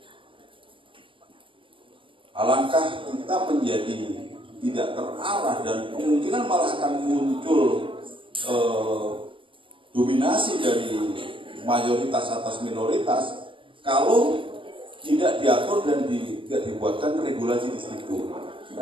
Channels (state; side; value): late; left; 0.25 ms